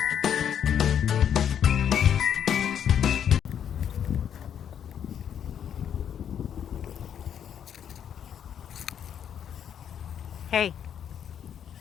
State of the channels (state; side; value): quieter; right; 8.9 dB